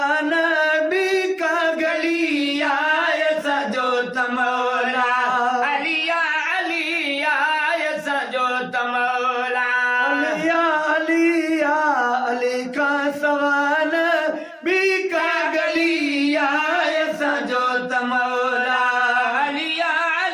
भी का गलिया सजो तमौला अलिया अलिया सजो तमौला अलिया अलिया अली का सवान भी का गलिया सजो तमौला अलिया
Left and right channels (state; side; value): identical; both; correlation 1.00